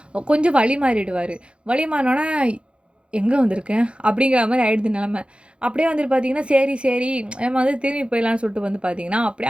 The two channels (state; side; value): late; left; 0.058 ms